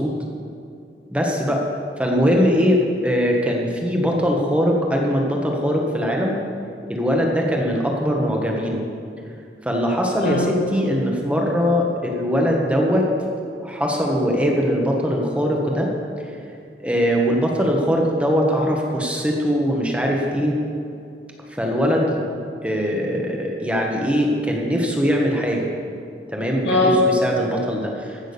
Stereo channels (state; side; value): normal; both; correlation 0.63